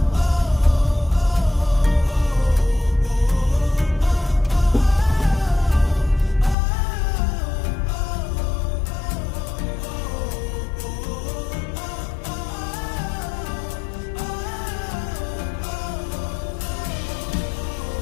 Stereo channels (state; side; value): drops out; right; at 6.6 s